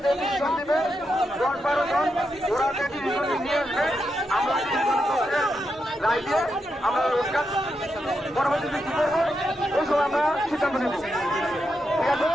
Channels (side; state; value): both; normal; correlation 0.85